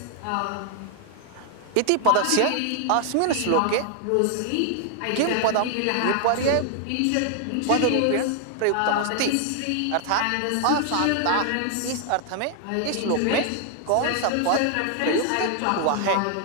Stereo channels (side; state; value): both; different; correlation 0.00